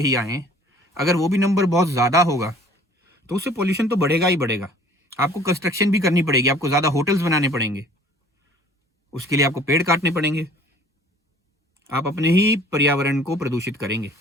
आएँ। अगर वो भी नंबर बहुत ज़्यादा होगा तो उससे पोल्यूशन तो बढ़ेगा ही बढ़ेगा। आपको कंस्ट्रक्शन भी करनी पड़ेगी, आपको ज़्यादा होटल्स बनाने पड़ेंगे, उसके लिए आपको पेड़ काटने पड़ेंगे। आप अपने ही पर्यावरण को प्रदूषित करेंगे।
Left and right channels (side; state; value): both; normal; correlation 0.52